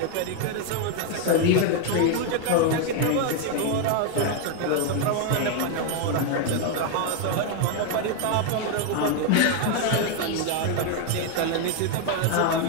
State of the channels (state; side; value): different; both; correlation 0.01